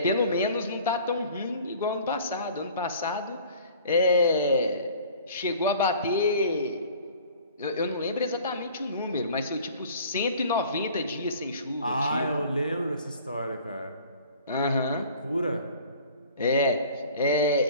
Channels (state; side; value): inverted; both; correlation -0.48